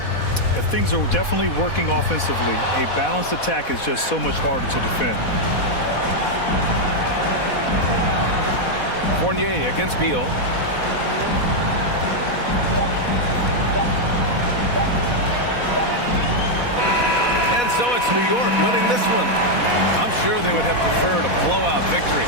If things are definitely working offensively, a balanced attack is just so much harder to defend. Fournier against Beal. And so it's New York winning this one. I'm sure they would have preferred a blowout victory,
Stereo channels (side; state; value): right; late; 4.1 ms